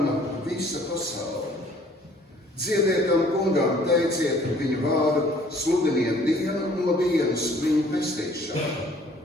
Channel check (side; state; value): both; normal; correlation 0.56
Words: visa pasaule. Dziediet tam kungam, teiciet viņu vārdu, sludiniet dienu no dienas viņu pestīšanu.